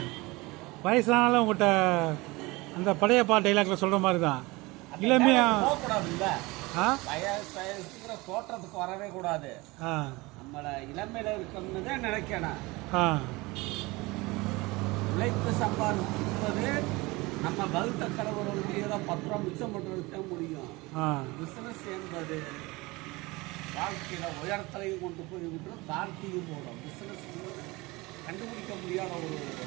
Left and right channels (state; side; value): quieter; left; 22.9 dB